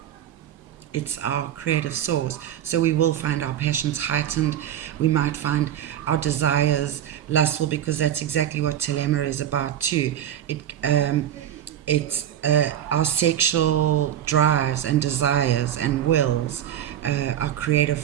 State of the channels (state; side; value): quieter; left; 10.6 dB